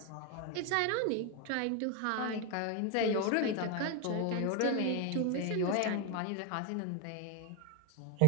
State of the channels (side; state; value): both; different; correlation 0.02